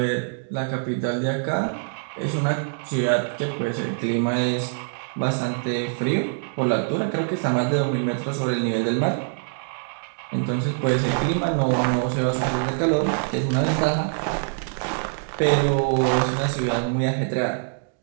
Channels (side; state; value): left; silent; digital silence